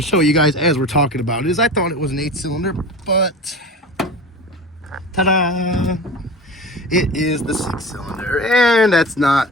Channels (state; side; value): normal; both; correlation 0.33